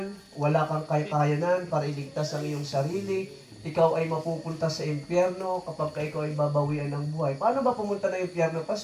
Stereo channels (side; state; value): both; identical; correlation 1.00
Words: wala kang kakayanan para iligtas ang iyong sarili, ikaw ay mapupunta sa impyerno kapag ikaw ay babawian ng buhay. Paano ba pumunta ng impyerno,